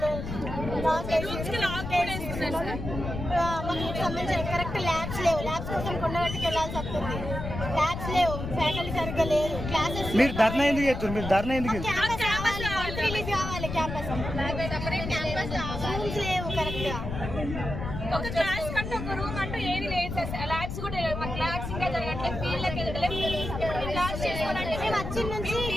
మాకు సంబంధించిన కరెక్ట్ ల్యాబ్స్ లేవు. ల్యాబ్స్ కోసం కొండగట్టుకు వెళ్ళాల్సి వస్తుంది. ల్యాబ్స్ లేవు, ఫ్యాకల్టీ సరిగ్గా లేదు, క్లాసెస్. మీరు ధర్నా ఎందుకు చేస్తారు? మీరు ధర్నా ఎందుకు క్యాంపస్ కావాలి, రిలీజ్ కావాలి. క్యాంపస్ రూమ్స్ లేవు కరెక్ట్ గా. ఒక క్లాస్ కంటే ఒక రూమ్ అంటూ ఏది లేదు సార్. ల్యాబ్స్ కూడా లేవు. మాకు ల్యాబ్స్ ఇంకా జరగట్లేదు, ఫీల్డ్కి వెళ్ళలేదు. ఇప్పుడు క్లాస్ చేసుకోవాలంటే మేము వచ్చిన నుంచి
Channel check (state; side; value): noise; left; rumble, 6 dB below the sound